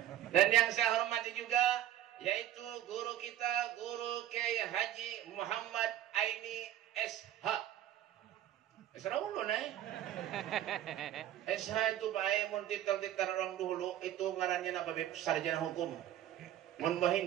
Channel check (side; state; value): left; quieter; 12.4 dB